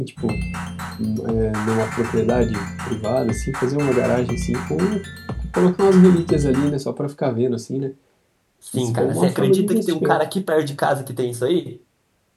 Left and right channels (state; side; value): identical; both; correlation 1.00